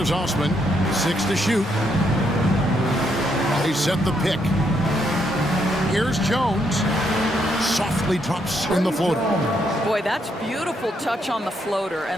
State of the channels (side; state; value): both; normal; correlation 0.76